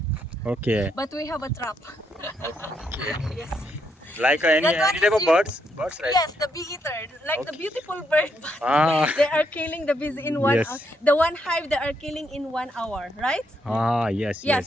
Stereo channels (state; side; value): normal; both; correlation 0.77